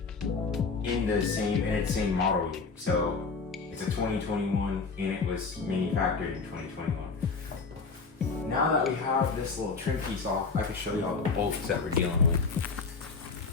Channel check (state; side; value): quieter; right; 4.6 dB